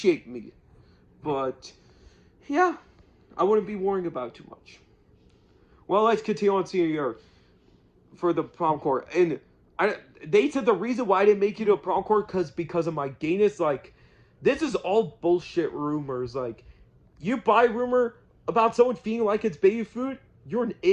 me. But, yeah, I wouldn't be worrying about it too much. Well, let's continue on senior year for the prom court. And they said the reason why I didn't make it to a prom court because of my gayness. Like, this is all bullshit rumors. Like, you buy rumor about someone feeling like it's baby food, you're an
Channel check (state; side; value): identical; both; correlation 1.00